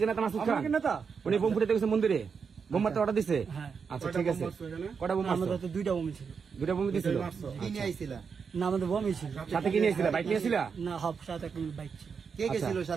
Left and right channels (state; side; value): quieter; left; 6.0 dB